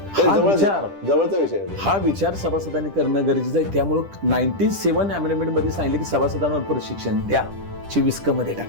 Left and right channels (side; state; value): left; late; 10 ms